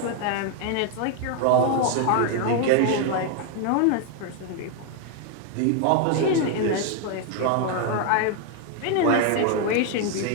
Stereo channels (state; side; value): different; both; correlation 0.00